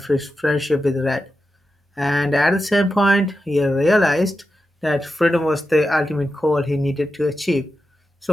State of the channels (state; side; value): normal; both; correlation 0.90